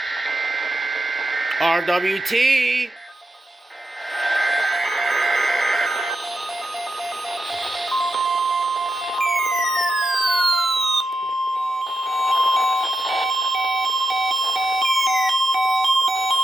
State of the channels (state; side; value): normal; both; correlation 0.87